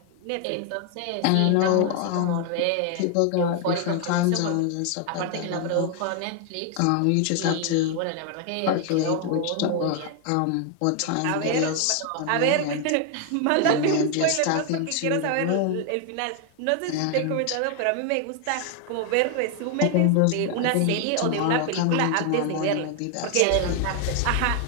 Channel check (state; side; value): different; both; correlation 0.00